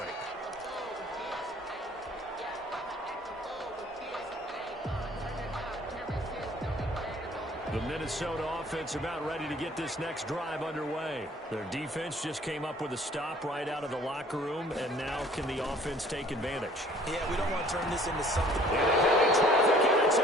The Minnesota offense about ready to get this next drive underway. Their defense just came up with a stop right out of the locker room, and now can the offense take advantage? Yeah, we don't want to turn this into something. And a heavy traffic, and it's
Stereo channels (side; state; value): both; normal; correlation 0.54